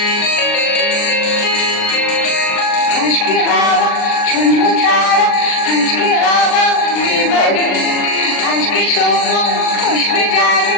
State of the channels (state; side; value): late; right; 39 ms